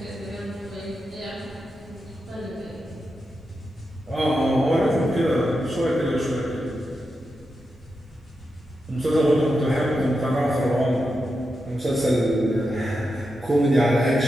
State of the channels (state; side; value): normal; both; correlation 0.88